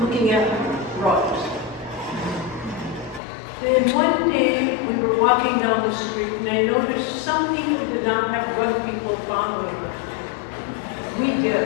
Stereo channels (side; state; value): right; drops out; at 3.2 s